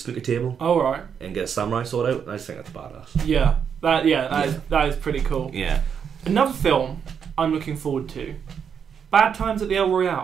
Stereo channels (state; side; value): quieter; left; 7.4 dB